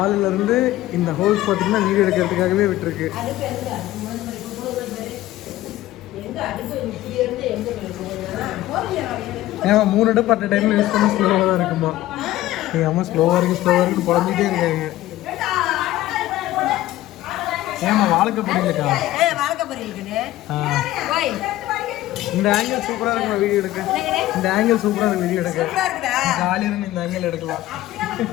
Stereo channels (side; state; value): right; quieter; 15.4 dB